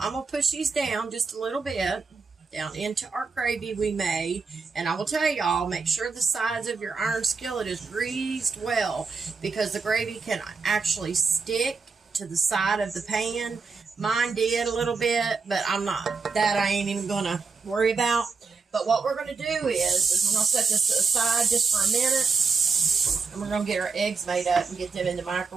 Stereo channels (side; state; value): left; quieter; 4.8 dB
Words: going to push these down just a little bit, down into our gravy we made. And I will tell y'all, make sure the sides of your iron skillet is greased well, because the gravy can actually stick to the side of the pan. Mine did a little bit, but I ain't even going to worry about. But what we're going to do is we're going to set this aside just for a minute, and we're going to get our eggs made up and get them in the